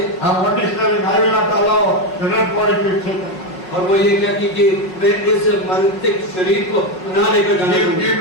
And one is telling, I will not allow the dead body to be taken. और वो ये कहती कि वे इस मृतिक शरीर को ना लेकर जाने Give दूंगी।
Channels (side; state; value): right; late; 5.4 ms